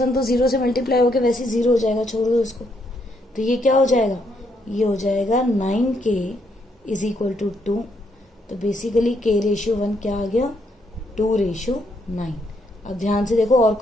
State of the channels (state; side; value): normal; both; correlation 0.74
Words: 1 तो 0 से मल्टीप्लाई होकर वैसे 0 हो जाएगा, छोड़ दो इसको। तो ये क्या हो जाएगा, ये हो जाएगा 9k इज इक्वल टू 2। तो बेसिकली k रेशियो 1 क्या आ गया, 2 रेशियो 9। अब ध्यान से देखो, और